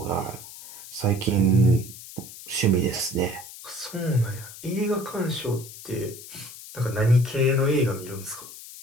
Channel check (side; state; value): left; noise; hiss, 15 dB below the sound